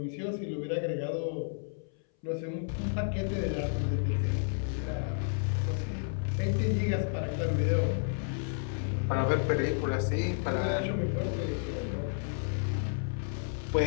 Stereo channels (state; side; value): silent; right; 57 dB below the other